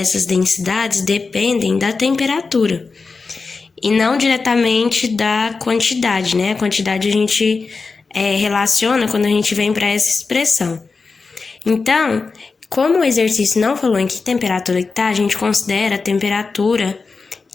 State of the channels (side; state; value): right; quieter; 4.3 dB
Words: densidades dependem da temperatura e não diretamente da quantidade, né? A quantidade a gente relaciona quando a gente vem para essa expressão. Então, como o exercício não falou em que temperatura que tá, a gente considera a temperatura